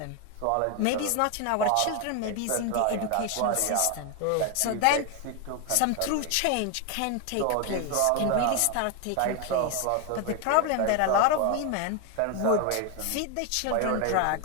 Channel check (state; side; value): different; both; correlation 0.01